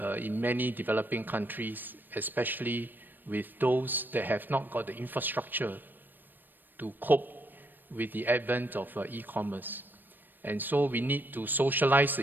in many developing countries, especially with those that have not got the infrastructure to cope with the advent of e-commerce. And so we need to socialize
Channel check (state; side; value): late; left; 0.092 ms